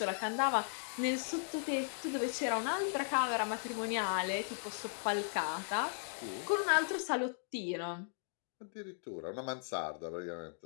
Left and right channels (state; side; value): silent; right; digital silence